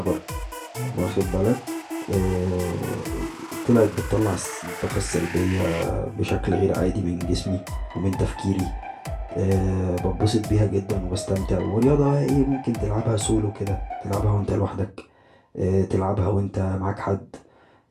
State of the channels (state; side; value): identical; both; correlation 1.00